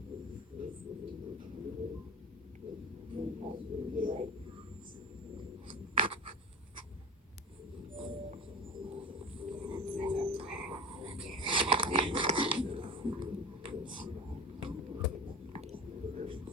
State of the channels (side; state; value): both; normal; correlation 0.31